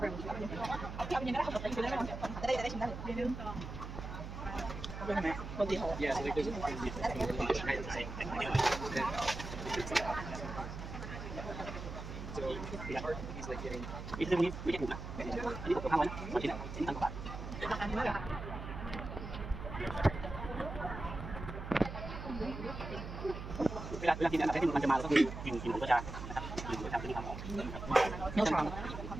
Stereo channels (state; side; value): noise; right; hum, 8 dB below the sound